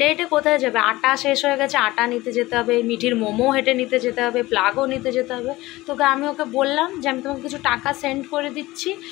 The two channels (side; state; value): right; quieter; 18.9 dB